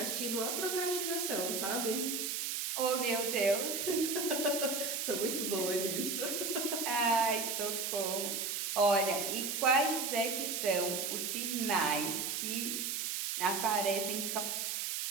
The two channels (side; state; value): right; noise; hiss, 1 dB below the sound